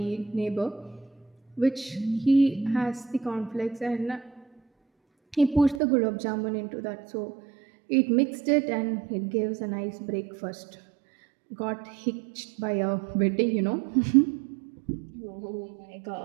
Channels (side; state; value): left; drops out; at 5.8 s